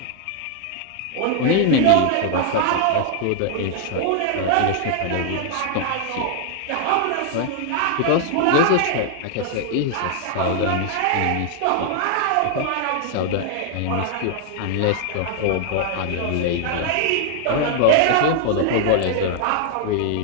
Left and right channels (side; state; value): both; different; correlation 0.00